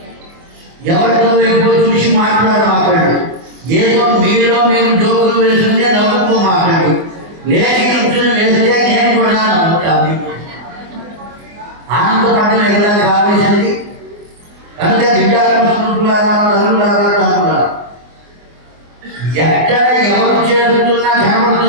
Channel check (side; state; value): left; late; 24 ms